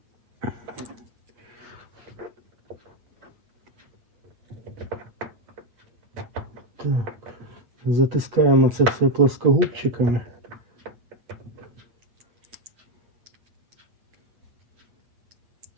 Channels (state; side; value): late; left; 8.6 ms